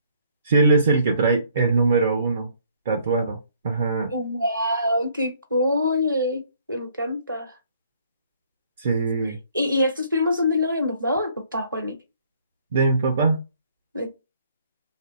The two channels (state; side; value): inverted; both; correlation -0.63